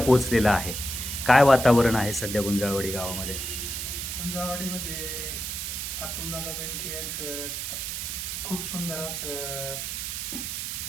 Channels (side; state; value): right; noise; hiss, 4 dB below the sound